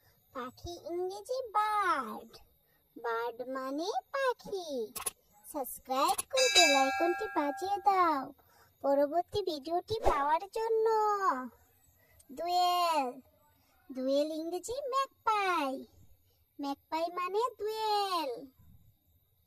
পাখি ইংরেজি বার্ড, বার্ড মানে পাখি। সাবস্ক্রাইব করে বেল আইকনটি বাজিয়ে দাও পরবর্তী ভিডিওটি পাওয়ার জন্য। দোয়েল, দোয়েল ইংরেজি ম্যাকপাই, ম্যাকপাই মানে দোয়েল।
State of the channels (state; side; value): identical; both; correlation 1.00